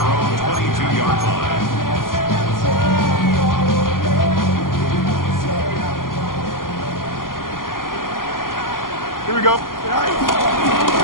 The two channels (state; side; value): late; right; 0.91 ms